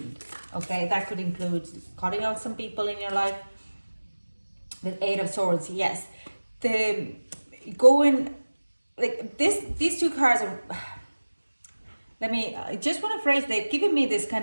Okay, that could include cutting out some people in your life. With Eight of Swords, yes, these two cards are, I just want to phrase, they've given me this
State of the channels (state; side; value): inverted; both; correlation -1.00